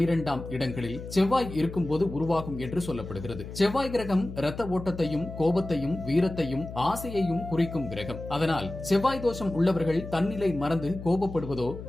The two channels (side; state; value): left; noise; hum, 11 dB below the sound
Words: இடங்களில் செவ்வாய் இருக்கும்போது உருவாகும் என்று சொல்லப்படுகிறது. செவ்வாய் கிரகம் இரத்த ஓட்டத்தையும் கோபத்தையும் வீரத்தையும் ஆசையையும் குறிக்கும் கிரகம். அதனால் செவ்வாய் தோஷம் உள்ளவர்கள் தன்னிலை மறந்து கோபப்படுவதோ